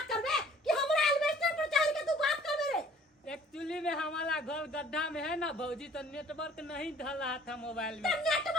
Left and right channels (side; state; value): both; normal; correlation 0.54